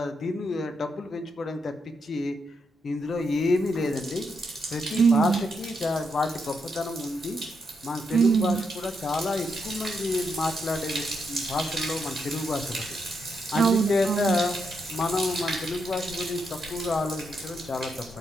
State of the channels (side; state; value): both; normal; correlation 0.81